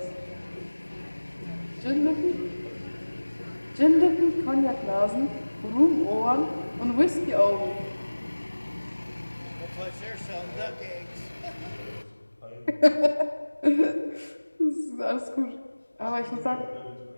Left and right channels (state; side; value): inverted; both; correlation -1.00